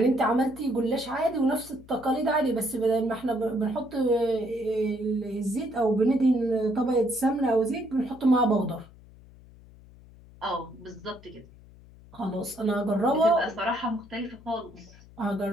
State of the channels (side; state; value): left; noise; hum, 22 dB below the sound